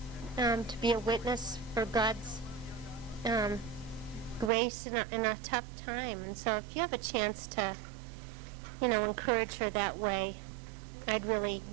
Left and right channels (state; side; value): drops out; left; at 4.5 s